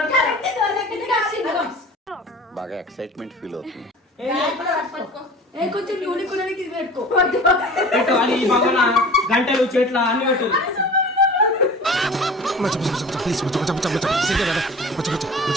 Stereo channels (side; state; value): both; normal; correlation 0.40